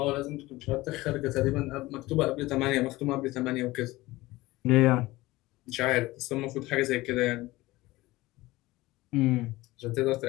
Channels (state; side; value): quieter; right; 19.2 dB